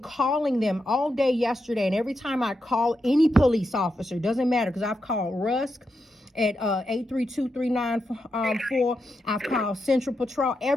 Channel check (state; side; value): normal; both; correlation 0.85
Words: them all day yesterday, and every time I call any police officer, doesn't matter, because I've called Rusk at 832-394. I've called Central Patrol.